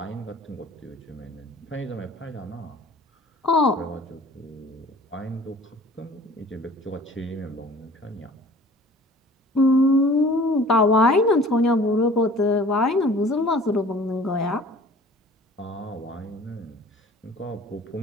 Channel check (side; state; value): both; normal; correlation 0.48